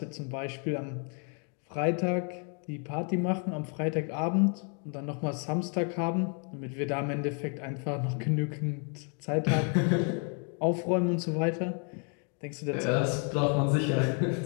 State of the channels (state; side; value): quieter; right; 39.7 dB